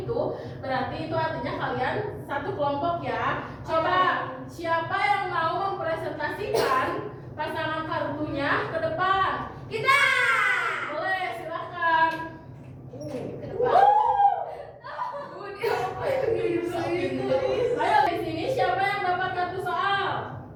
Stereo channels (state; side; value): identical; both; correlation 1.00